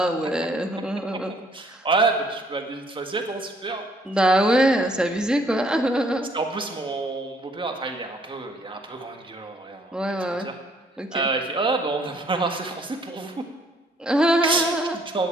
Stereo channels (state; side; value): normal; both; correlation 0.64